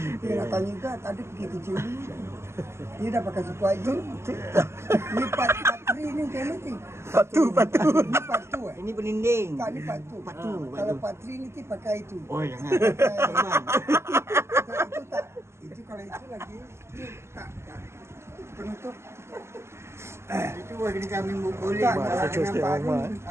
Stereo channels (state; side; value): late; left; 0.13 ms